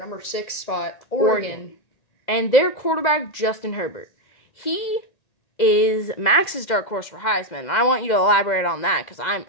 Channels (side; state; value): right; late; 2.0 ms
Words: 6 spot, Oregon. And their quarterback, Justin Herbert. He is Max's dark horse for Heisman, and I want you to elaborate on that because